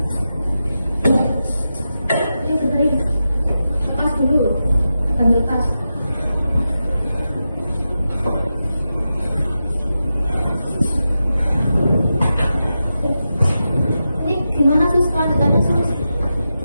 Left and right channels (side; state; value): both; inverted; correlation -0.90